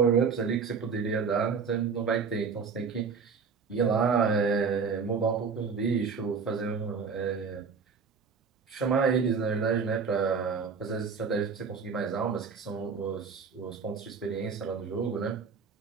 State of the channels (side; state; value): left; quieter; 5.5 dB